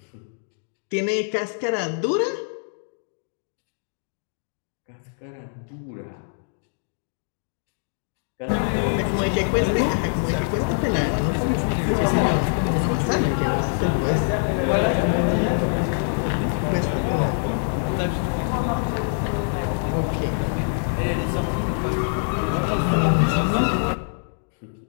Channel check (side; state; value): right; silent; digital silence